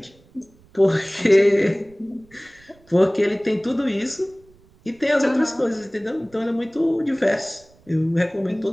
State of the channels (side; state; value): right; noise; rumble, 29 dB below the sound